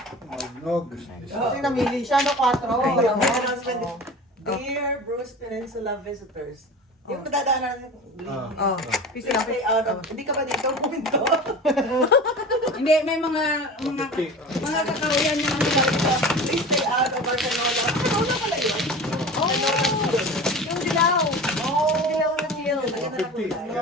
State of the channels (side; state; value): both; normal; correlation 0.35